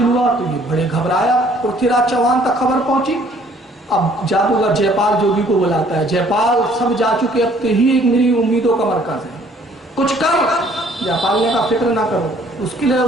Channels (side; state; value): both; normal; correlation 0.59